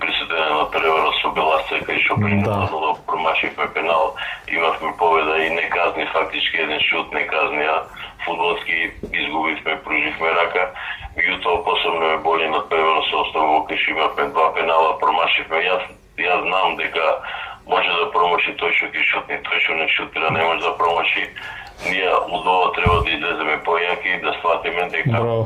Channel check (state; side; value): identical; both; correlation 1.00